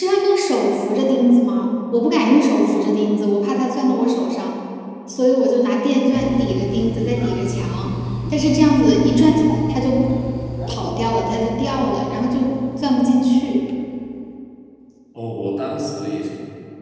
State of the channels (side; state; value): both; identical; correlation 1.00